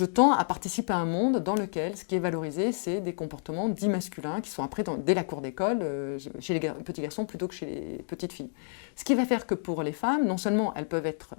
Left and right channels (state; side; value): silent; right; digital silence